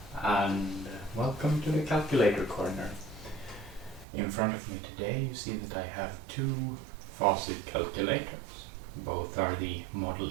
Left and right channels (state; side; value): drops out; left; at 4.0 s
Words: and welcome to the calculator corner. In front of me today you see that I have two Facit calculators. Both are the model